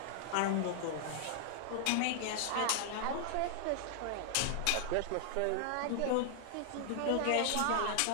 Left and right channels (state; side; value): different; both; correlation 0.00